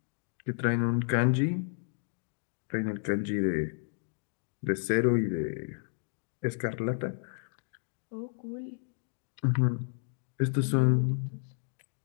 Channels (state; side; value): silent; right; digital silence